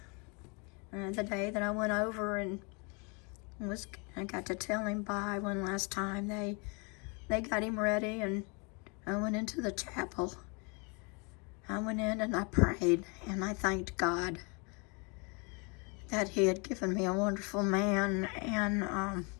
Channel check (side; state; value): right; quieter; 32.2 dB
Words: The day that I went over and I got to tell him bye one last time. They got him ready and I went into the chapel. I went in and I prayed and I thanked God that he had given me a wonderful man. And